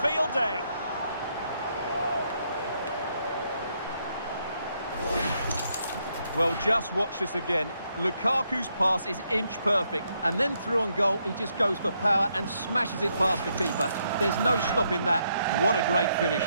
day. Well, just watch this again. Lukaku's pass is inch perfect, and then through on goal, he just goes for power and smashes it past the keeper. There's no stopping that. What a great finish.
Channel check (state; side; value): inverted; both; correlation -0.76